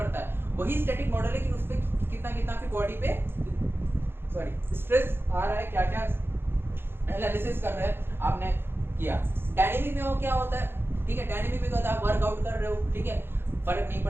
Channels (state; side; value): late; left; 0.11 ms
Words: है, वही स्टैटिक मॉडल है कि उस पे कितना आपकी बॉडी पे स्ट्रेस आ रहा है, क्या क्या एनालिसिस कर रहे हैं, आपने किया। डायनेमिक में वो क्या होता है, ठीक है, डायनेमिक में क्या होता है, आप वर्कआउट कर रहे हो, ठीक है, फर्क नहीं